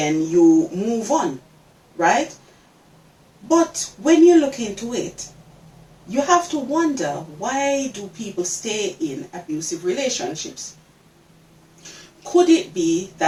you move on, right? But when you look into it, you have to wonder, why do people stay in abusive relationships? Could it be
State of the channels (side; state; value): both; identical; correlation 1.00